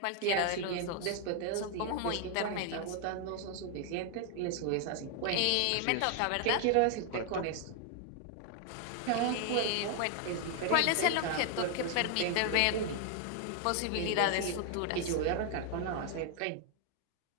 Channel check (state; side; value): different; both; correlation 0.00